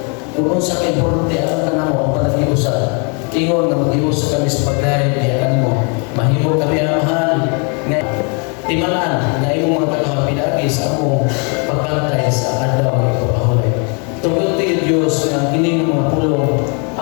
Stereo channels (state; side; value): quieter; right; 35.8 dB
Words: Kung sa kay-importante alam ka namo ang panagiusan. Ingon nga mag-ius kami sa pagdaig niya kanimo. Mahimo kami amahan nga timalaan nga imong mga katawhan pinagi sa among pagkantay sa adlaw nga ipapahulay. Tungod ti Dios nga kining mga pulong